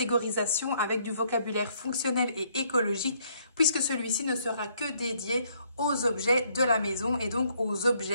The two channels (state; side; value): inverted; both; correlation -0.68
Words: avec du vocabulaire fonctionnel et écologique puisque celui-ci ne sera que dédié aux objets de la maison et donc aux